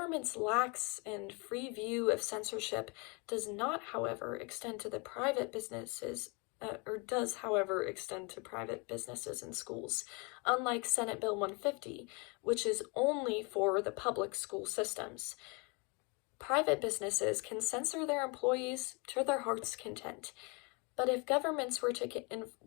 lax and free view of censorship does not, however, extend to the private businesses, does, however, extend to private businesses and schools, unlike Senate Bill 150, which is only for the public school systems. Private businesses can censor their employees to their heart's content. But if governments were to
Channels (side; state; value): right; quieter; 31.0 dB